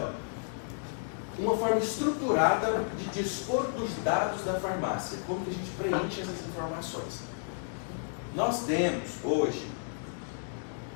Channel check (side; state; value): right; silent; digital silence